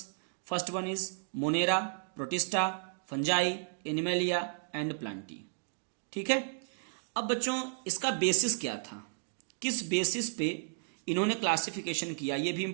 First one is monera, protista, fungi, animalia and plantae. ठीक है। अब बच्चों, इसका बेसिस क्या था? किस बेसिस पे इन्होंने क्लासिफिकेशन किया, ये भी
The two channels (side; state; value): left; silent; digital silence